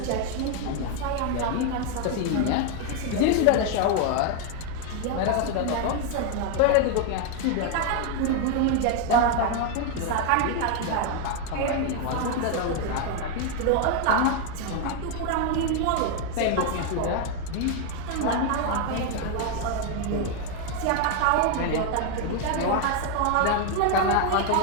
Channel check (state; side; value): different; both; correlation 0.01